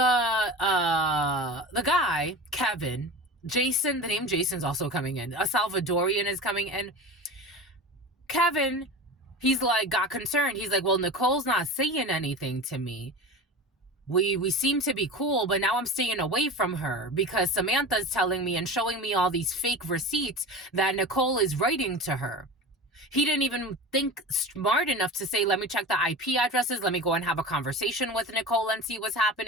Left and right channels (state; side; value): normal; both; correlation 0.31